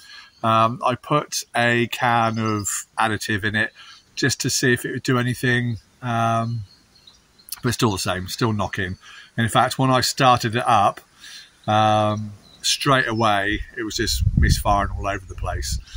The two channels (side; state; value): both; identical; correlation 1.00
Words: I put a can of additive in it just to see if it would do anything, but it's still the same, still knocking. And in fact, when I started it up, straight away, it was just misfiring all over the place.